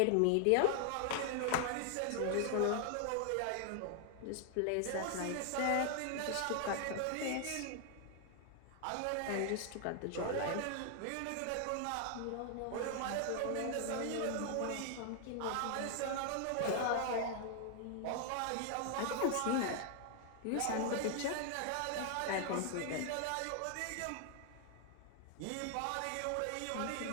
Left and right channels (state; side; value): different; both; correlation 0.00